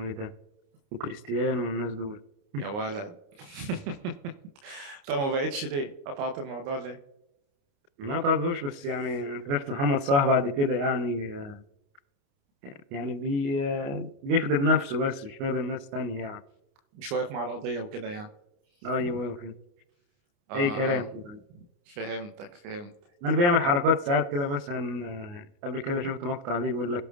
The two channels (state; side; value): late; left; 29 ms